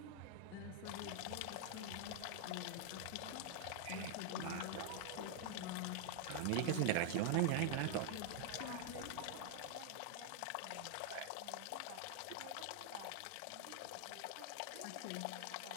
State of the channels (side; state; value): both; different; correlation 0.00